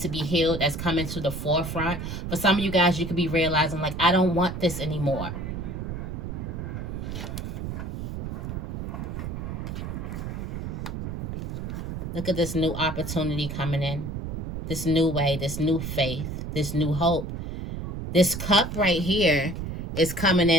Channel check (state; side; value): noise; right; rumble, 5 dB below the sound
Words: to be healed, that's coming to the forefront. For some of you guys, you could be realizing, like, I don't want this anymore. Look at this new opportunity coming in. This new way, this new faith, this new hope. This cup right here is coming